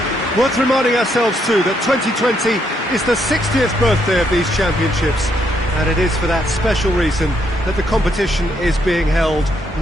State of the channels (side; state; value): both; normal; correlation 0.75